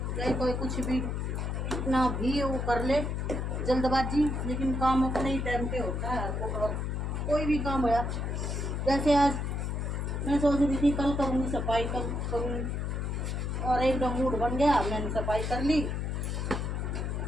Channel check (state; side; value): noise; left; hum, 2 dB below the sound